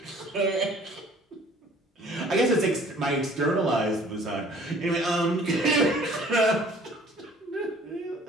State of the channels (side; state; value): both; normal; correlation 0.53